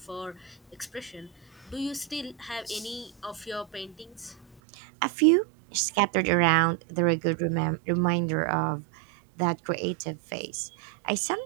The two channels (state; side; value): drops out; left; at 4.6 s